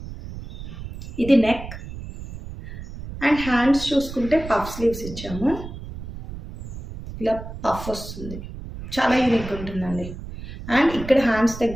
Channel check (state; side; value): noise; right; rumble, 11 dB below the sound